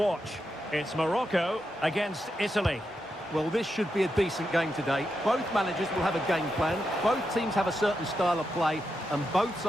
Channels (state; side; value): normal; both; correlation 0.86